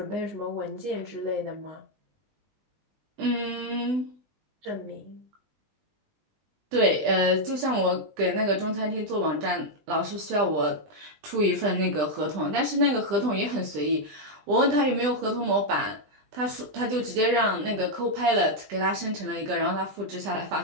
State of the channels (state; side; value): late; left; 20 ms